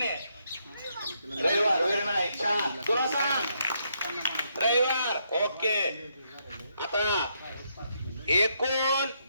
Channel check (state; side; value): inverted; both; correlation -0.76